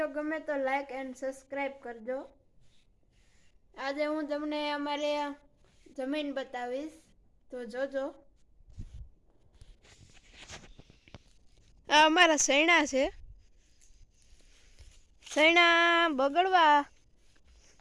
ગમે તો લાઈક એન્ડ સબસ્ક્રાઈબ કરજો. આજે હું તમને અમારે જમીન બતાવીશ, તો જોજો. આ અમારા સૈણા છે. સૈણા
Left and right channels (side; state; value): both; identical; correlation 1.00